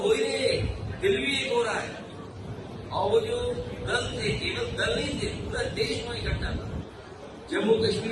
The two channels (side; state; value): both; identical; correlation 1.00